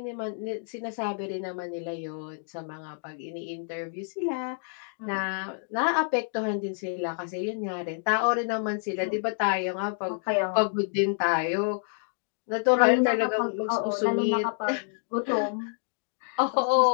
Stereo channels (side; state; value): right; silent; digital silence